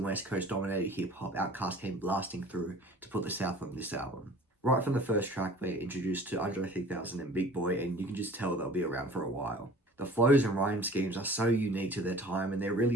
West Coast dominated hip-hop, Outkast came blasting through to put the South on this album. Right from the first track, we're introduced to Andre 3000 and Big Boy, and you can just tell they'll be around for a while. The flows and rhyme schemes are so unique to their time, and there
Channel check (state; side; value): normal; both; correlation 0.46